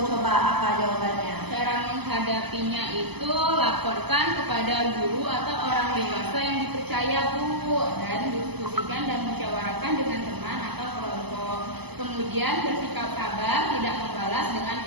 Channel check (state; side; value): late; left; 0.98 ms